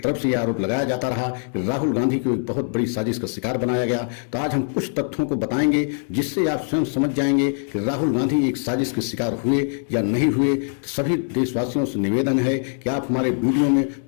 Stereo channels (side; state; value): right; silent; digital silence